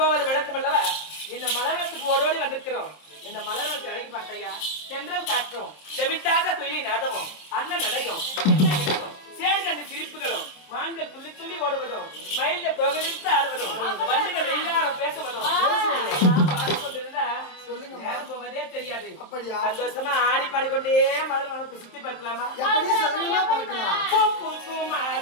விளக்கம் அல்லவா? இந்த மலவனத்துக்கு ஓடோடி வந்திருக்கிறோம். இந்த மலவனத்தை அழகி பார்த்தையா, சென்றல் காற்றும் செவிட்டாத தொழிலை நாடவும் அண்ணன் நடையும் சேர்ந்த சிரிப்புகளும் மான்கள் துள்ளி துள்ளி ஓடுவதும் மயில்கள் தொகை விரித்து ஆடுவதும் வண்டுகள் வெயிலாரம் பேசுவதும் பாடிக்கொண்டிருந்தா நேரம் போவதே தெரியாது. சந்தோஷமா ஆடி பாடிக்கொண்டே மலவனத்தை சுத்தி பார்க்கலாமா?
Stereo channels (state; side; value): late; right; 27 ms